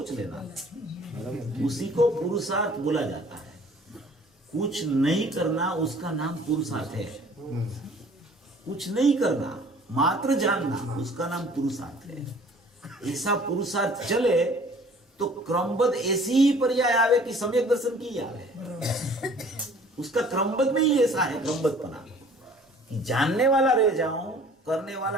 लेना, उसी को पुरुषार्थ बोला जाता है। कुछ नहीं करना उसका नाम पुरुषार्थ है। कुछ नहीं करना, मात्र जानना, उसका नाम पुरुषार्थ है। ऐसा पुरुषार्थ चले तो क्रमबद्ध ऐसी ही पर्याय आवे कि सम्यक दर्शन की आवे। उसका क्रमबद्ध में ही ऐसा है क्रमबद्धपना कि जानने वाला रह जाऊं, करने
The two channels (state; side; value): normal; both; correlation 0.52